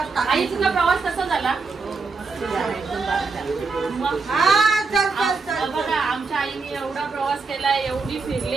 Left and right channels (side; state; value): left; quieter; 4.2 dB